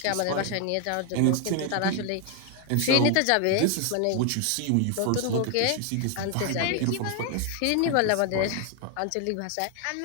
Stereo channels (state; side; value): different; both; correlation 0.01